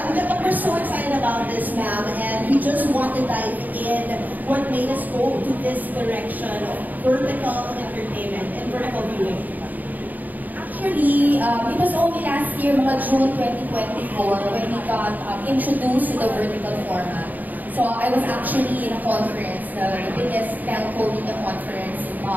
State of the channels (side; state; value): left; late; 0.083 ms